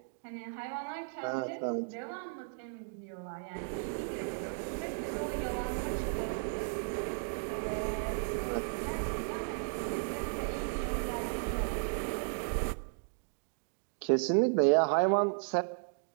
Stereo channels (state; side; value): silent; left; digital silence